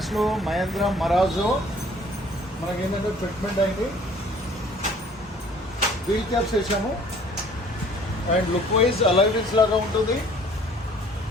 Mahindra Marazzo మనకేంటంటే fitment అయింది, wheel caps వేసాము and look wise alloy wheels లాగా ఉంటుంది.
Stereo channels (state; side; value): normal; both; correlation 0.54